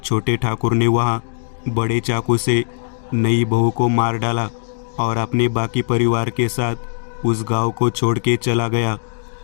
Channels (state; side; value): silent; right; digital silence